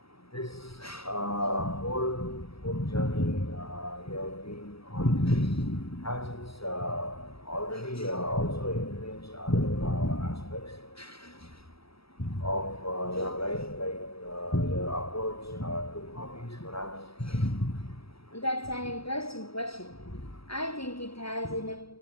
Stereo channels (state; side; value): late; right; 0.76 ms